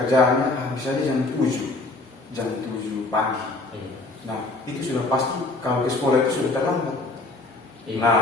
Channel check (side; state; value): right; quieter; 3.2 dB